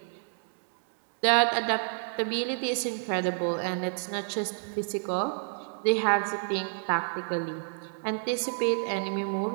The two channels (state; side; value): silent; left; digital silence